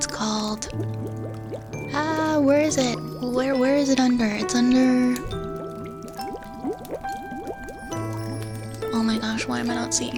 called... where is it? Where is it under? It's under... Oh my gosh, why am I not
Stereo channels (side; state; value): both; identical; correlation 1.00